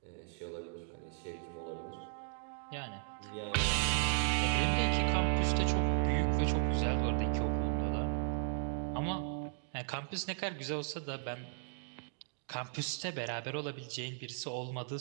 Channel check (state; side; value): silent; left; digital silence